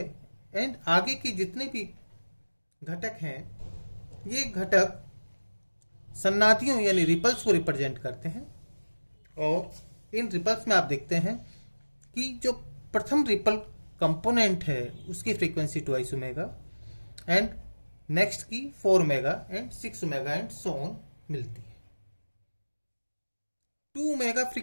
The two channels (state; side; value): inverted; both; correlation -1.00